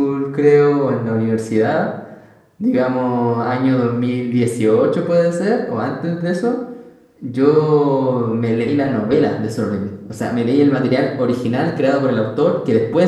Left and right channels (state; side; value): identical; both; correlation 1.00